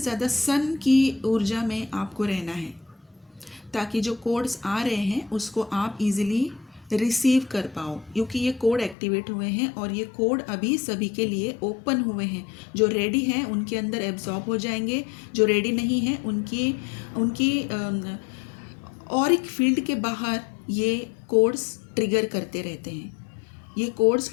सन की ऊर्जा में आपको रहना है, ताकि जो कोड्स आ रहे हैं उसको आप इजीली रिसीव कर पाओ, क्योंकि ये कोड एक्टिवेट हुए हैं और ये कोड अभी सभी के लिए ओपन हुए हैं। जो रेडी हैं उनके अंदर एब्जॉर्ब हो जाएंगे, जो रेडी नहीं हैं उनकी ऑरिक फील्ड के बाहर ये कोड्स ट्रिगर करते रहते हैं। ये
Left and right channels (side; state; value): right; drops out; at 9.0 s